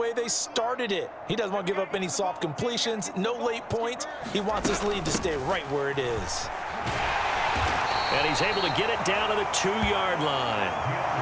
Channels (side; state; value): both; identical; correlation 1.00